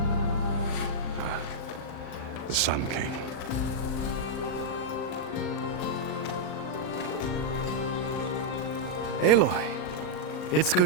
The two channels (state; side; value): late; right; 39 ms